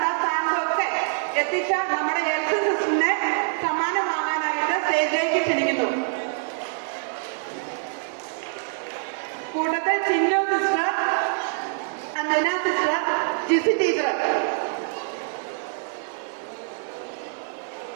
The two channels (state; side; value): silent; left; 62 dB below the other